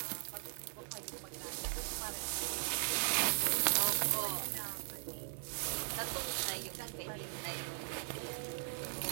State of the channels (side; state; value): left; silent; 52 dB below the other